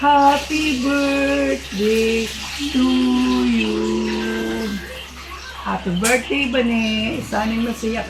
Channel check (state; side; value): identical; both; correlation 1.00